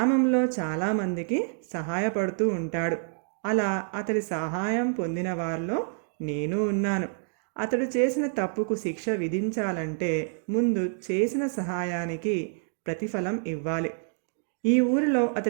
చాలామందికి సహాయపడుతూ ఉంటాడు. అలా అతడి సహాయం పొందిన వారిలో నేను ఉన్నాను. అతడు చేసిన తప్పుకు శిక్ష విధించాలంటే ముందు చేసిన సహాయానికి ప్రతిఫలం ఇవ్వాలి. ఈ ఊరిలో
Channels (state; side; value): silent; left; 60 dB below the other